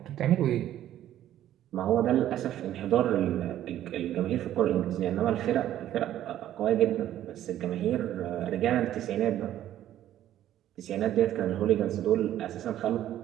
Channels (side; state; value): left; quieter; 12.2 dB